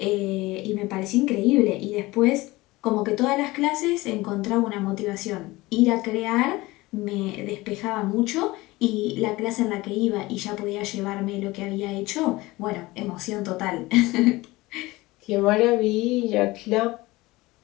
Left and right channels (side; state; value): right; quieter; 20.4 dB